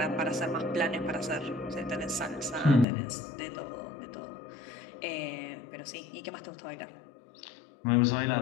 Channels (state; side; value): drops out; right; at 2.9 s